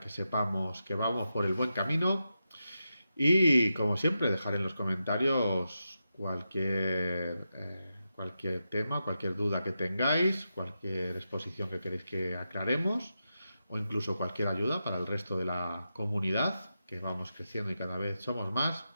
sepamos que vamos por el buen camino. Y como siempre, dejar en los comentarios cualquier tema, cualquier duda que tengáis, cualquier exposición que queréis que aclaremos o incluso cualquier ayuda para el resto de la comunidad, que vamos creciendo y cada vez somos más.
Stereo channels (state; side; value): inverted; both; correlation -0.88